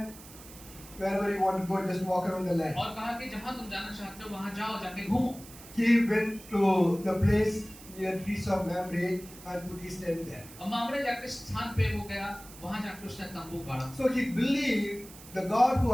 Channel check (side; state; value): right; noise; hiss, 18 dB below the sound